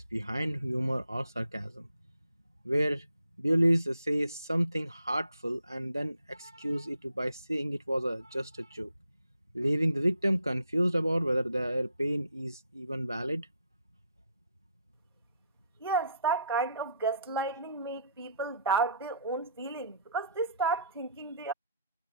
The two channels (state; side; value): inverted; both; correlation -0.69